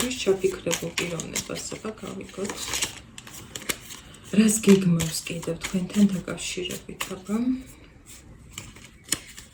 ჩაფიქრებულ პიროვნებას, აბა გავიგოთ. რას გეგმავს კიდევ თქვენთან დაკავშირებით, აბა?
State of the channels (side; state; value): both; identical; correlation 1.00